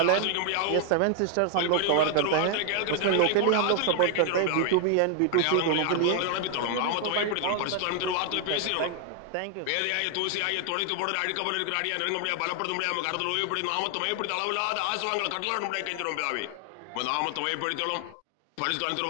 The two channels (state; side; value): different; both; correlation 0.00